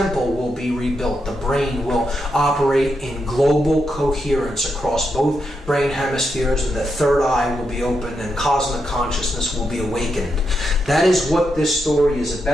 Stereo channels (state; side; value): normal; both; correlation 0.84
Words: will be rebuilt. The brain will operate in global coherence across both brain hemispheres, and the third eye will be opened, and cosmic consciousness will be awakened. That is what this story is